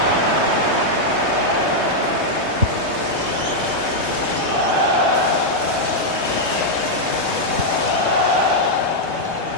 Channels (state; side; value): late; left; 3.2 ms